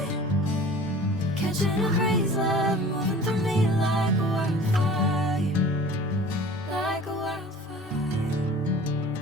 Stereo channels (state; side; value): normal; both; correlation 0.44